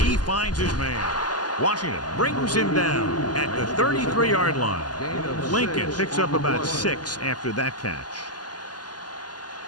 He finds his man. Washington brings him down at the 33-yard line. Lincoln picks up about 6 after that catch.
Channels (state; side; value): late; right; 0.70 ms